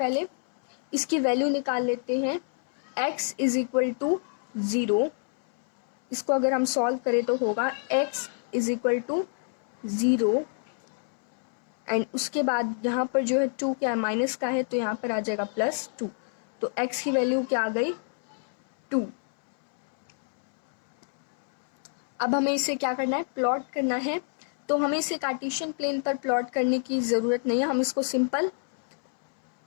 इसकी वैल्यू निकाल लेते हैं। x इज इक्वल टू 0, इसको अगर हम सॉल्व करें तो होगा x is equal to 0 and उसके बाद यहाँ पर जो है 2 क्या है माइनस का है तो यहाँ पर आ जाएगा +2। तो x की वैल्यू क्या आ गई 2। अब हमें इसे क्या करना है प्लॉट करना है। तो हमें इसे कार्टेशियन प्लेन पर प्लॉट करने की ज़रूरत नहीं है, हम इसको सिंपल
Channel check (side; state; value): right; silent; 60 dB below the other